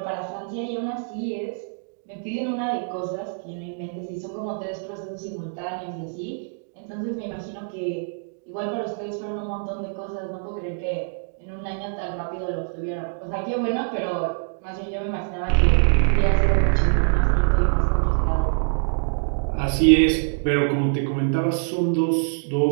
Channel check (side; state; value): left; silent; digital silence